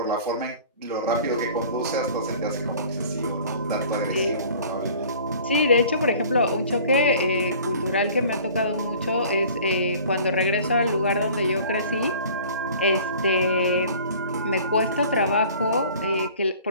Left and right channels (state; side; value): inverted; both; correlation -0.47